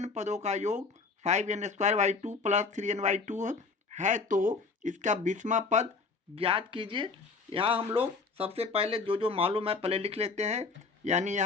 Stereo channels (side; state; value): right; quieter; 4.4 dB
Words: पदों का योग 5n² प्लस 3n/2 है, तो इसका 20वां पद ज्ञात कीजिए। यहाँ हम लोग सबसे पहले जो मालूम है पहले लिख लेते हैं। यानी